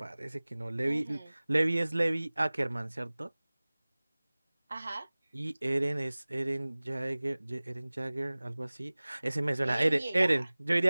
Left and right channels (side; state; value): both; inverted; correlation -1.00